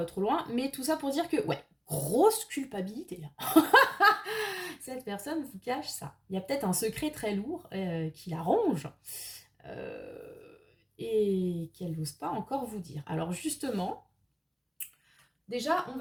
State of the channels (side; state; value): both; identical; correlation 1.00